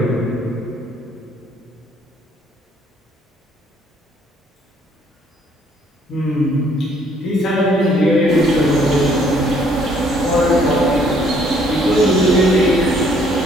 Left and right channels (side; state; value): both; normal; correlation 0.63